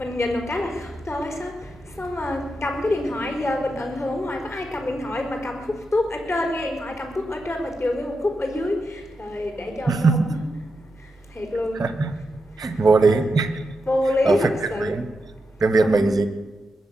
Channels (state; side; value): normal; both; correlation 0.86